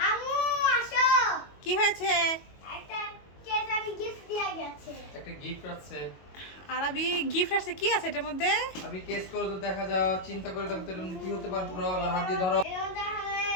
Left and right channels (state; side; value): late; right; 22 ms